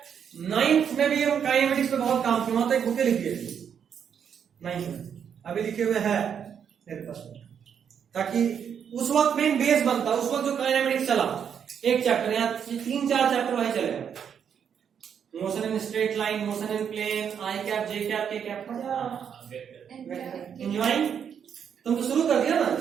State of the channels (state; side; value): quieter; left; 7.9 dB